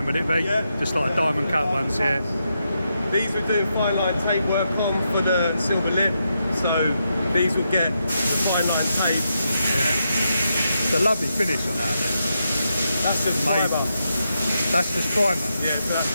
would it be? Yeah. Just like diamond cut ones, yeah. These we do fine line tape work on for the silver lip. So these will get fine line tape. Yeah. It's a lovely finish on that. That's just Amazing. fibre. That's just primer. Yeah, so that's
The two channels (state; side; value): inverted; both; correlation -0.84